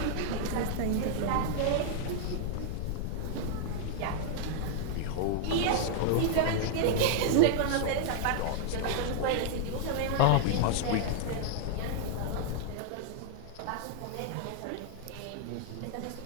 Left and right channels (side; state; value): both; different; correlation -0.01